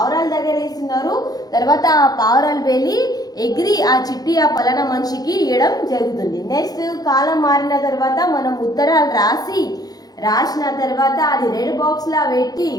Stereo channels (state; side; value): late; right; 0.19 ms